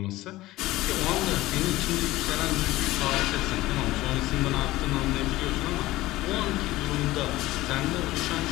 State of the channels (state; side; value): quieter; right; 17.6 dB